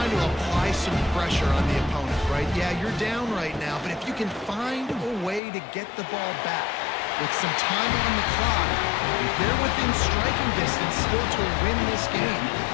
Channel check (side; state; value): right; drops out; at 5.4 s